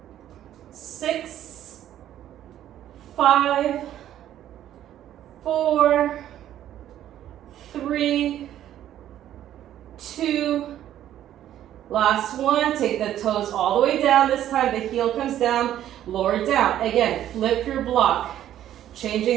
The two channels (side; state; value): left; quieter; 11.8 dB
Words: 6, 5, 4, 3, 2, last one. Take the toes all the way down. This time the heel comes down, lower down. Again, flip your block.